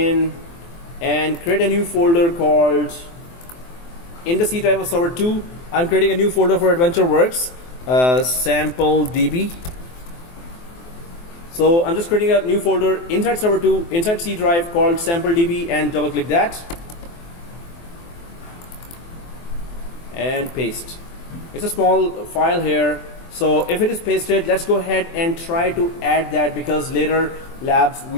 and create a new folder called, in the C drive of server 2, I'm creating a new folder for Adventureworks, sample DB. So I'm just creating a new folder inside server 2, inside C drive, called sample DB, and double click that and paste. It's a small file here. So if it is pasted, let's go ahead and try to add that, because later labs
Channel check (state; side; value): late; right; 24 ms